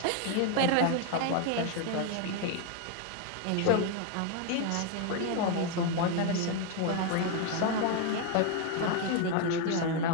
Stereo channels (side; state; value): both; different; correlation 0.01